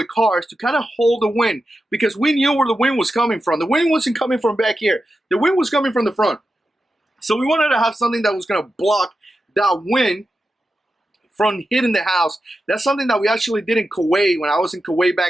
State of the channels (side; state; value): both; normal; correlation 0.90